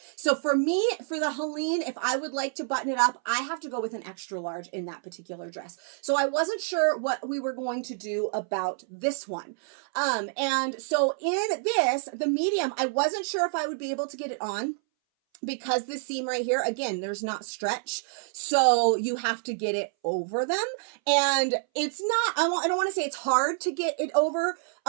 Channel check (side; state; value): left; silent; 59 dB below the other